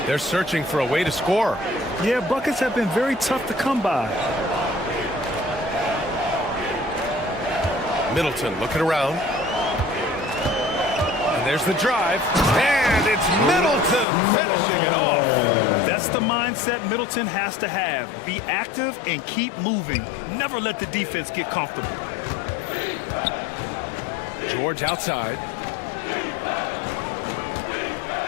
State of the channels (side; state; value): right; drops out; at 14.1 s